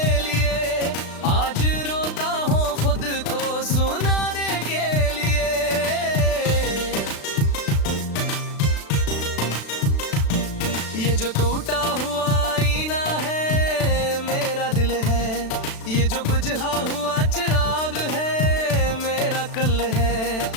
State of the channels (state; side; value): late; right; 36 ms